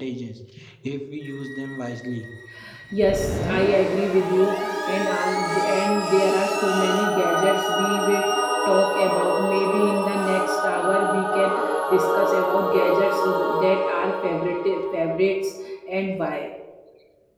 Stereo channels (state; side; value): identical; both; correlation 1.00